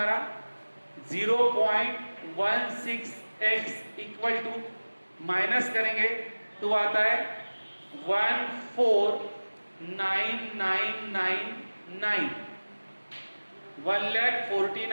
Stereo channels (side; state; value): both; inverted; correlation -1.00